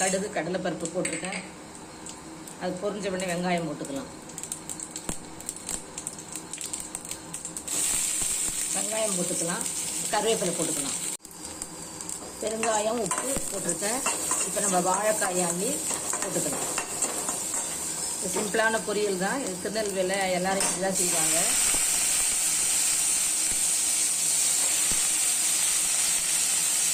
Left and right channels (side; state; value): both; identical; correlation 1.00